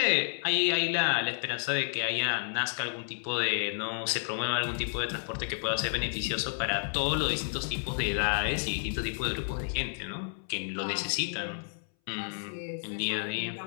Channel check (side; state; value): right; silent; 57 dB below the other